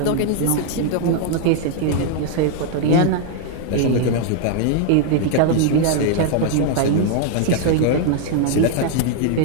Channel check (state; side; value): different; both; correlation 0.00